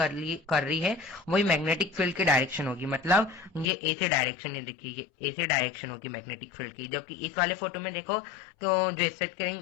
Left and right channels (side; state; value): right; drops out; at 3.7 s